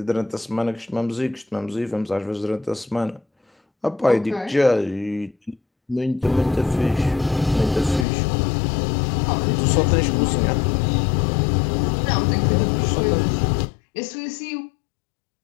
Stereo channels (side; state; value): right; drops out; at 8.1 s